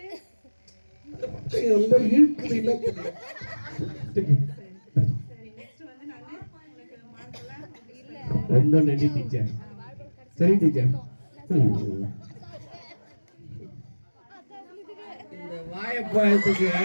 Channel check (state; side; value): inverted; both; correlation -1.00